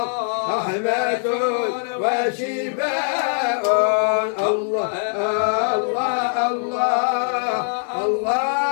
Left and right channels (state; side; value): silent; right; digital silence